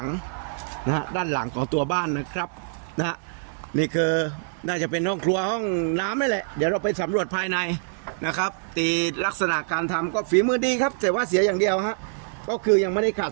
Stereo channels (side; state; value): left; silent; 61 dB below the other